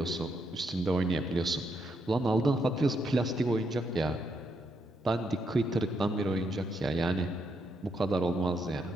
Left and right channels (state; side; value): normal; both; correlation 0.78